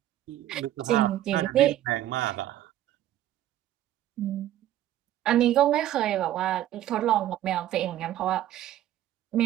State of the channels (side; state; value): left; quieter; 12.9 dB